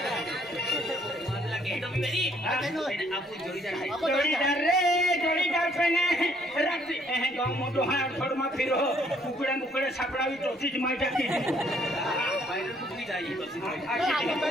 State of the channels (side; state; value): both; normal; correlation 0.65